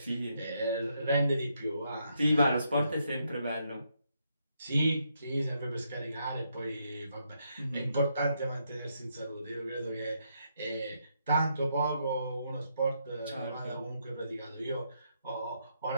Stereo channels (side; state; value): both; inverted; correlation -0.77